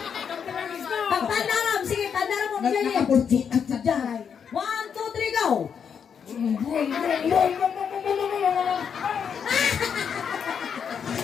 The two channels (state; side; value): quieter; right; 7.2 dB